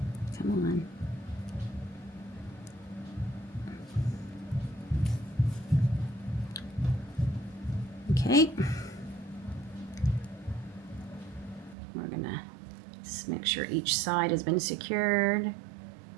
Come on. Okay. We're gonna just make sure each side has been secured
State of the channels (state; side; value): drops out; left; at 11.8 s